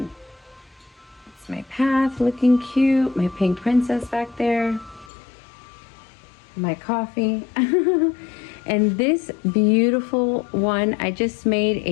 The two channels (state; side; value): drops out; right; at 5.1 s